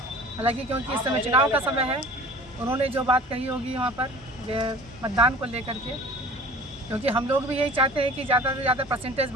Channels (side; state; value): left; noise; hum, 23 dB below the sound